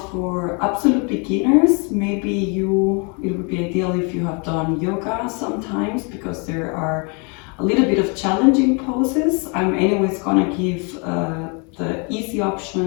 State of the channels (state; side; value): quieter; right; 34.1 dB